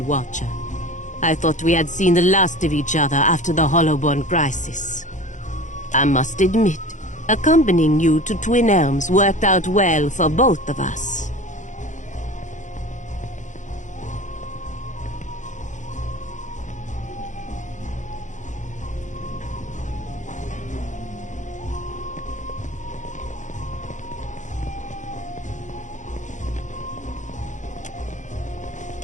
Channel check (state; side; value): late; right; 0.36 ms